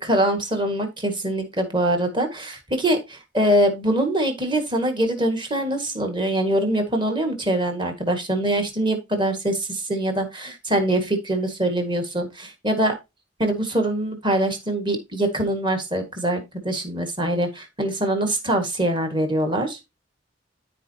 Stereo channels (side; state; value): both; normal; correlation 0.43